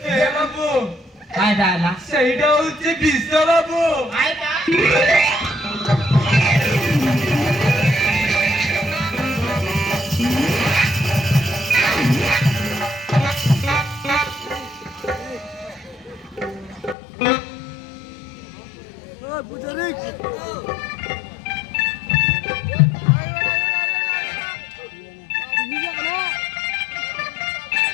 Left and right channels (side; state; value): right; drops out; at 16.9 s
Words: এ বাবু আয় দালা সেইটা হচ্ছে বিস্তা বাবু আয় দা পূজারি